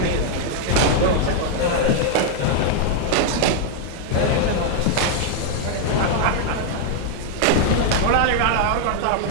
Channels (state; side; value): different; both; correlation -0.01